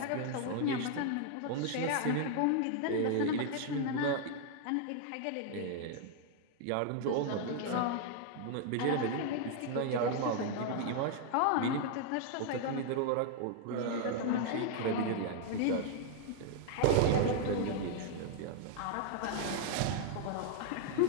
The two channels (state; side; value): different; both; correlation 0.00